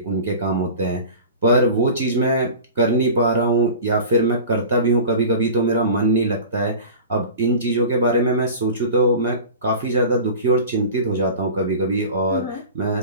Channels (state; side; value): inverted; both; correlation -0.37